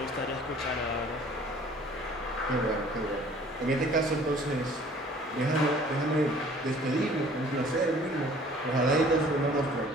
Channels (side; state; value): both; normal; correlation 0.52